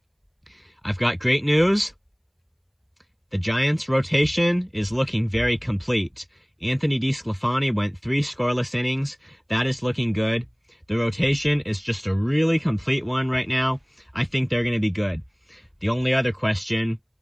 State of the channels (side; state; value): both; identical; correlation 1.00